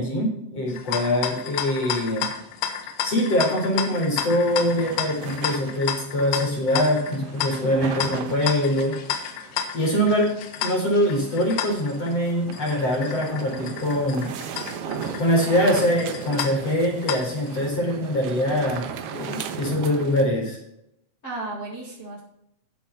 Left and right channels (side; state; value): right; late; 7.3 ms